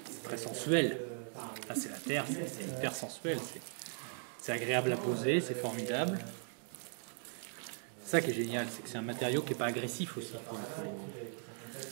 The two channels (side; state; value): left; silent; 52 dB below the other